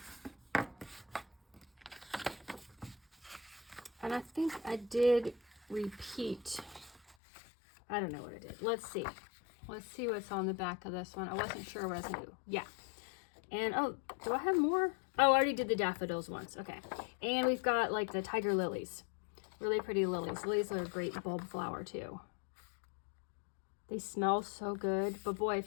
And I think I did repeat. I don't know what I did. Let's see. Let's see what's on the back of this one. I wasn't sure what I was going to do. Yeah. And, oh, do I have more? Oh, I already did the daffodils once. Okay. And we've got, like, the tiger lilies. Really pretty lilies. Lilies are a great bulb flower, too. They smell so good. But, boy,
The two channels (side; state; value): right; drops out; at 7.2 s